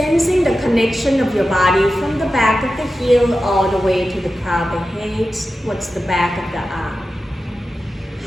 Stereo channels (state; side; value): normal; both; correlation 0.92